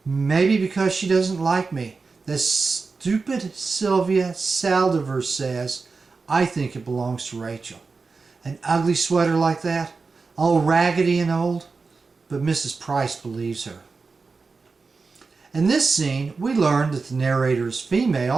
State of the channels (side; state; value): left; quieter; 4.4 dB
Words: Maybe because she doesn't like me. The stupid Sylvia Saldivar says, I think it belongs to Rachel. An ugly sweater like that, all raggedy and old, but Mrs. Price believes her. In this scene, we learn that the narrator is